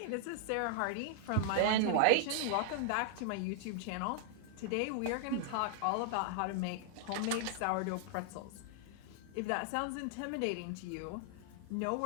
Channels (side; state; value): both; different; correlation -0.01